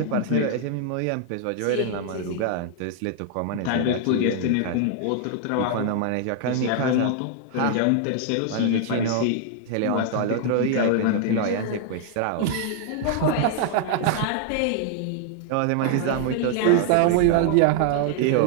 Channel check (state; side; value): different; both; correlation 0.00